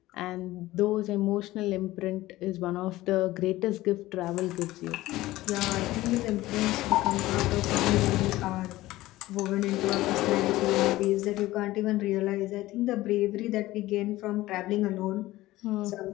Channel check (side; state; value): right; quieter; 17.2 dB